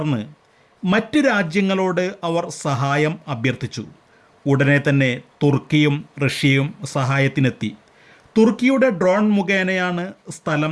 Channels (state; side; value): identical; both; correlation 1.00